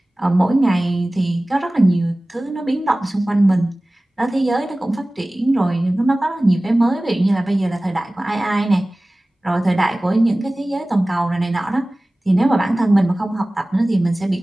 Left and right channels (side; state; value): both; normal; correlation 0.98